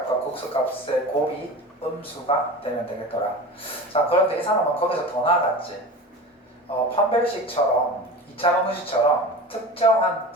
극소값의 곱이 음수가 되면 되겠더라. 자, 그런데 이 사람은 거기서 더 나아갔지. 판별식처럼 2차 방정식처럼 특정한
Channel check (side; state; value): both; normal; correlation 0.33